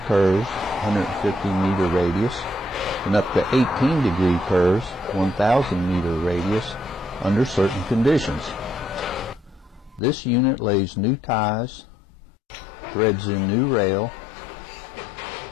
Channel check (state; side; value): drops out; right; at 10.0 s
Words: curves, 150-meter radius, and up to 18-degree curves, 1,000-meter radius, under certain conditions. This unit lays new ties, threads in new rail,